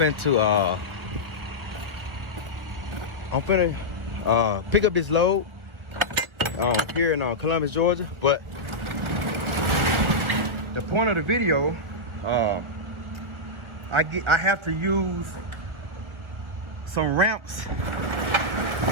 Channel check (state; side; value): late; left; 1.6 ms